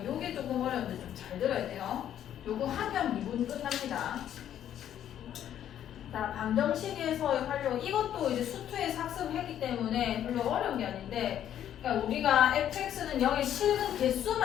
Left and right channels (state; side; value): quieter; right; 10.6 dB